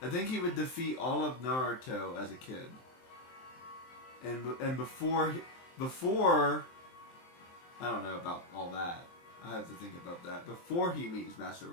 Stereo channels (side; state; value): right; late; 23 ms